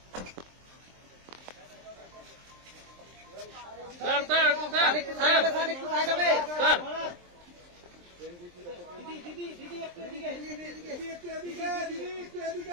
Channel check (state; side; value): late; left; 23 ms